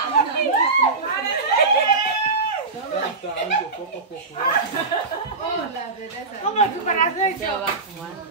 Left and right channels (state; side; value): quieter; left; 3.9 dB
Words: ¿Cómo tú para hacer eso?